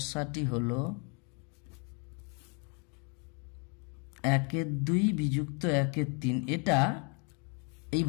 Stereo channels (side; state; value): right; quieter; 35.9 dB